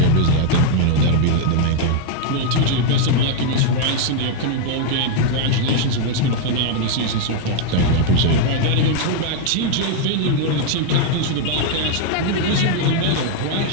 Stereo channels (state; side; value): different; both; correlation 0.00